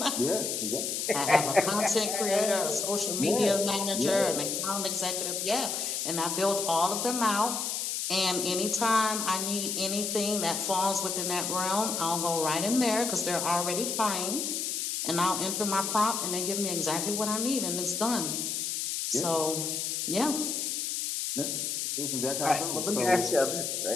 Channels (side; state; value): left; noise; hiss, 1 dB below the sound